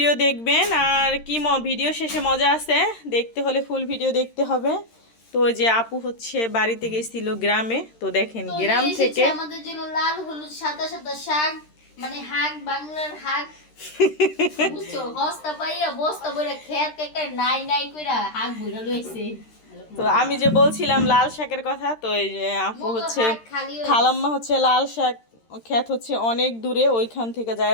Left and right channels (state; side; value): late; right; 13 ms